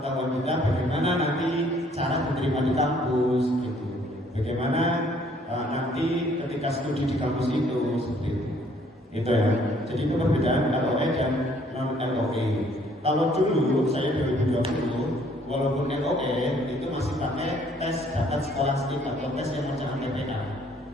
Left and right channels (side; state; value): both; normal; correlation 0.62